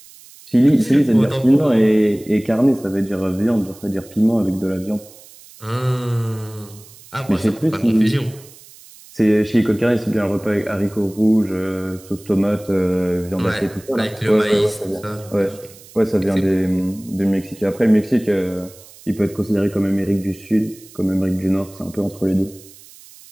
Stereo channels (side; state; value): right; noise; hiss, 22 dB below the sound